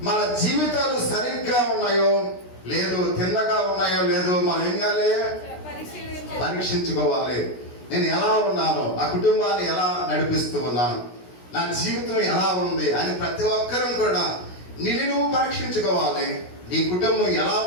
మన జీవితాలు సరిగ్గా ఉన్నాయో లేదు, తిన్నగా ఉన్నాయో లేదో మనం ఏం చేయాలి? పరీక్షించుకోవాలి. నేను ఎలా ఉన్నాను, నా కుటుంబాన్ని ఎలా నడిపిస్తూ ఉన్నాను, నా జీవితం ఎలా ఉంది అని ప్రతి ఒక్కరూ కూడా నిన్ను నువ్వు పరీక్షించుకోవాలి. నీ కుటుంబం ఎలా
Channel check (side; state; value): right; late; 16 ms